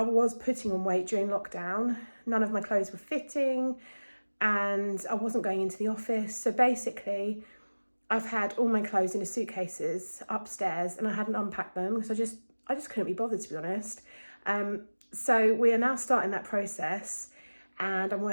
was putting on weight during lockdown. None of my clothes were fitting and I wasn't going into the office. So basically, I've had all my clothes in suitcases upstairs and I hadn't unpacked them because I just couldn't be bothered, to be honest. So we are now starting that process and I'm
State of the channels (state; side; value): inverted; both; correlation -1.00